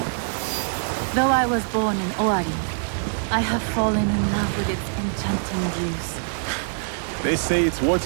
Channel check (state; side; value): silent; left; digital silence